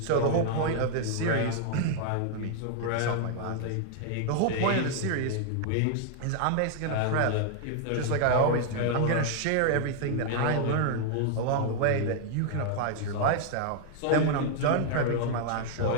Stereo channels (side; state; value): both; different; correlation 0.00